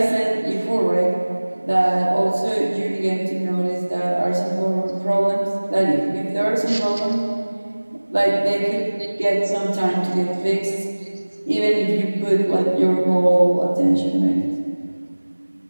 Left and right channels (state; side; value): inverted; both; correlation -1.00